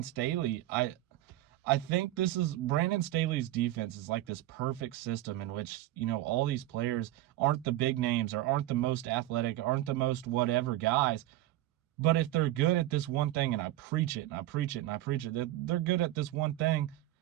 Staley. I think this is Brandon Staley's defense is like this perfect system in which, all these players aren't the big names or aren't the most athletic, aren't the most whatever guys. But if they're good at this one thing, and I preach it, and I preach it, and I preach it, they're good at this one thing,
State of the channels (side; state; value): left; quieter; 15.3 dB